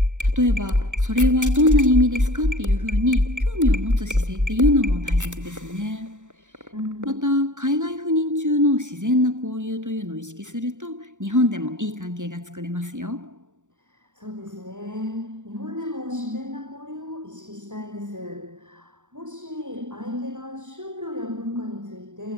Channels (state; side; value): late; left; 0.86 ms